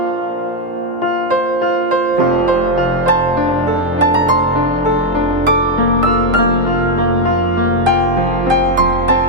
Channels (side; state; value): both; normal; correlation 0.03